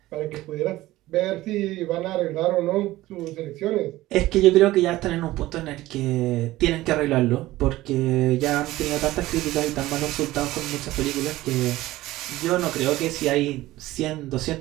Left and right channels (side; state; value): left; quieter; 16.9 dB